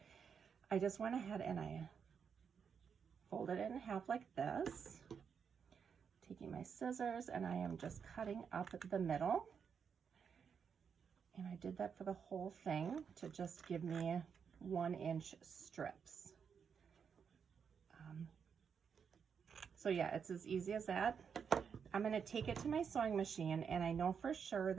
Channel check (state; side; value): quieter; left; 6.7 dB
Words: I just went ahead and I folded it in half like this, taking my scissors, and I am just cutting up the middle. And I did that for the whole thing to just give me 1-inch strips. So yeah, it's as easy as that. I'm going to take it to my sewing machine, and I know for sure